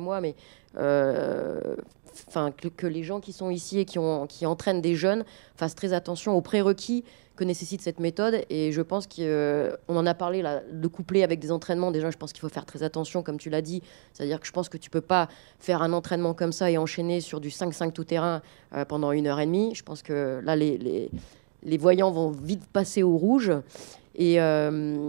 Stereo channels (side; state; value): left; silent; digital silence